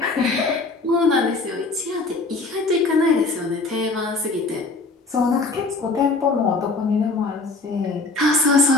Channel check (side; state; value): right; quieter; 3.5 dB